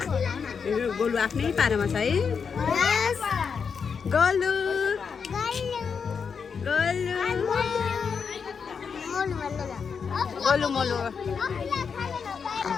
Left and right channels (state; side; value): quieter; right; 6.1 dB